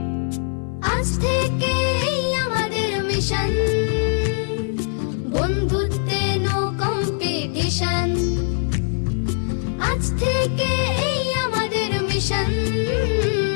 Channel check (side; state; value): right; silent; 64 dB below the other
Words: আজ থেকে এই আমাদের মিশন, বন্ধুত্বে নো কম্পিটিশন। আজ থেকে এই আমাদের মিশন,